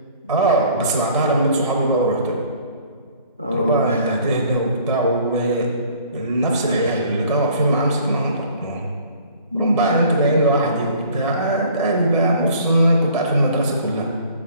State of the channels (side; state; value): both; inverted; correlation -0.54